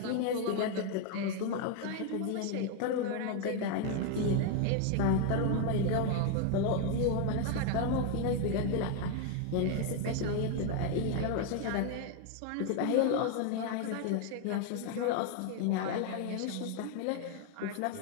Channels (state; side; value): different; both; correlation 0.01